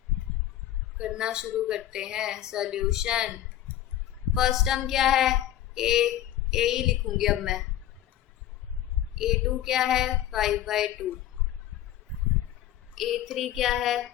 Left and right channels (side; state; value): right; quieter; 12.6 dB